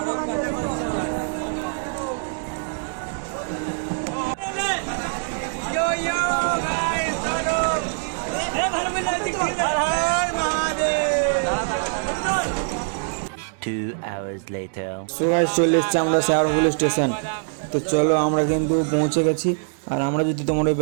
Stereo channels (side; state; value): left; silent; digital silence